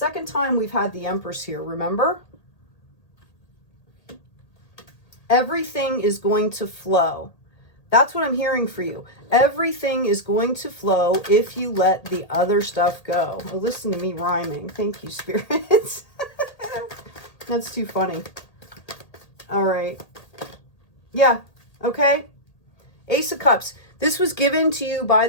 time we've had the Empress here, remember? Everything is going to flow. That's what I'm hearing for you. Everything is going to flow if you let the other stuff go. Oh, listen to me rhyming. Thank you, spirits. That's too funny. All right. Yeah. Okay. Ace of Cups. This was given to you by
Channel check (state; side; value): late; right; 1.8 ms